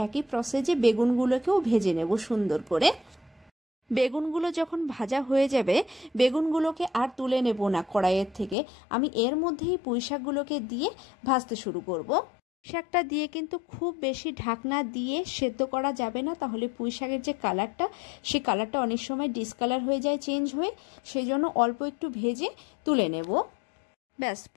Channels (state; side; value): drops out; right; at 8.6 s